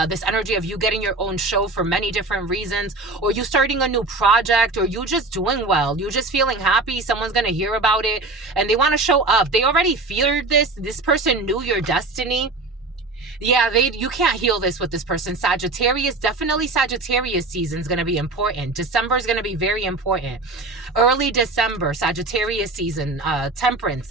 this energy of you getting your own show for many different reasons, or you starting a new project, or you just doing well. You just feeling happy. Someone's going to hear about it and they want to show up. They already feared this. This person knew your destiny. Yeah, you can't heal this with this person. Sagittarius, definitely Sagittarius season is going to be important. December is going to be very important. Early December, Sagittarius season,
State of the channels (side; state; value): left; quieter; 3.3 dB